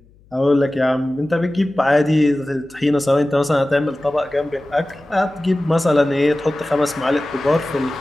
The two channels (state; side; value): noise; left; hum, 29 dB below the sound